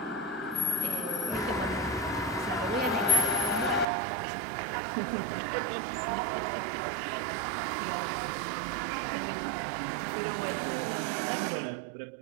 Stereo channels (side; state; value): left; drops out; at 3.9 s